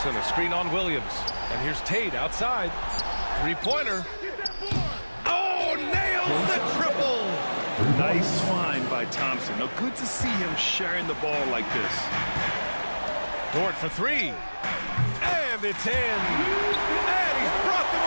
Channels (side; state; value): both; inverted; correlation -1.00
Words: a screen on Williams. And here's Tate outside. Three-pointer. Oh, nails the triple. Nice find by Thompson. Now, good to see him sharing the ball like this. Dort for 3. And it's in. And he's brought them